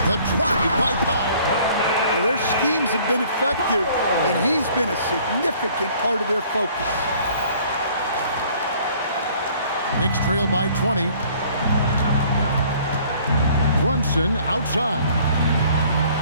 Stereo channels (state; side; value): inverted; both; correlation -0.56